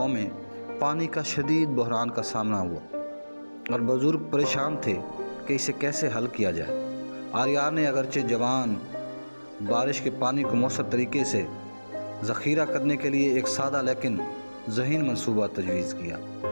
میں پانی کا شدید بحران کا سامنا ہوا اور بزرگ پریشان تھے کہ اسے کیسے حل کیا جائے۔ آریان نے اگرچہ جوان بارش کے پانی کو مؤثر طریقے سے ذخیرہ کرنے کے لیے ایک سادہ لیکن ذہین منصوبہ تجویز کیا۔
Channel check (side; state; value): both; inverted; correlation -1.00